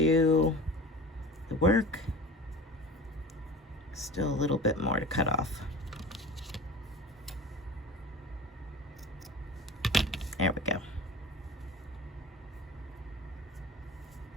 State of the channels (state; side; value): normal; both; correlation 0.37